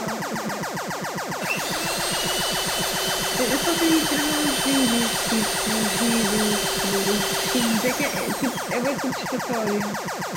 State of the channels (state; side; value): identical; both; correlation 1.00